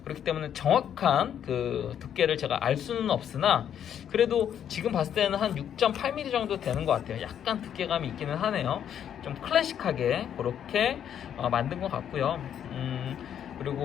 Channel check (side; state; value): right; quieter; 9.3 dB